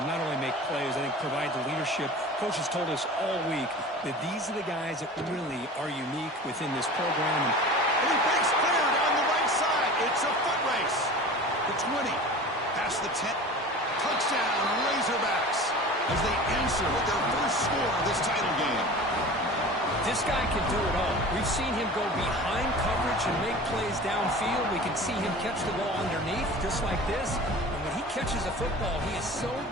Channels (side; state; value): both; normal; correlation 0.38